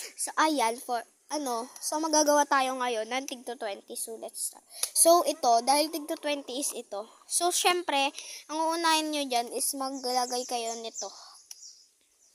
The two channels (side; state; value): both; identical; correlation 1.00